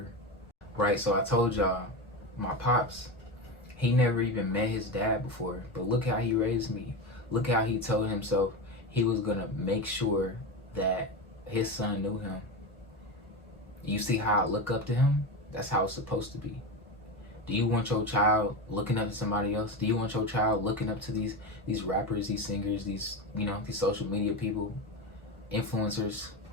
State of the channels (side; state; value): both; normal; correlation 0.19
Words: Right? So I told y'all, my pops, he never even met his dad before, but look how he raised me. Look how he told himself he was gonna make sure that his son knew him. You see how I look up to him? That's how it's supposed to be. Do you want your child looking up to somebody else? Do you want your child looking up to these rappers, these singers, these social media people, influencers,